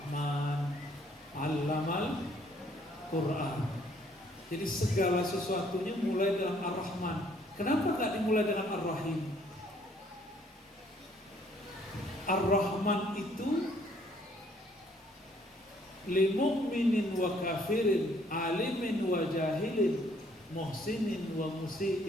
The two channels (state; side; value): normal; both; correlation 0.64